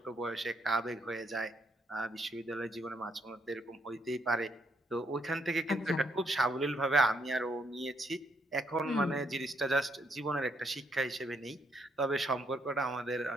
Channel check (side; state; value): both; normal; correlation 0.73